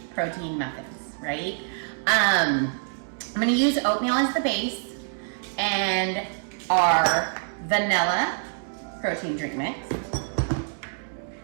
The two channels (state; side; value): silent; left; digital silence